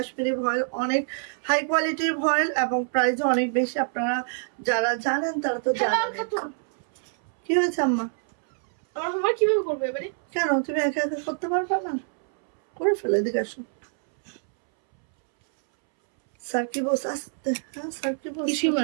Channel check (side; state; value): left; silent; 61 dB below the other